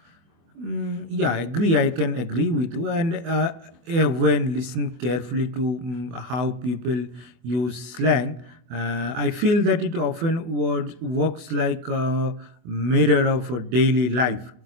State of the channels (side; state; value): left; late; 24 ms